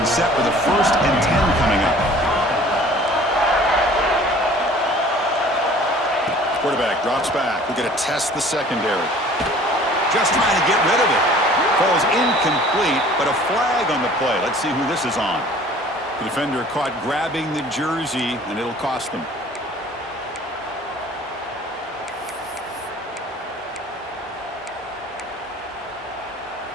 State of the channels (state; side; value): normal; both; correlation 0.50